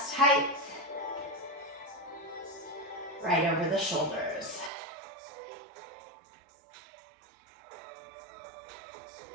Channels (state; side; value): drops out; left; at 4.7 s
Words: height, right over the shoulders.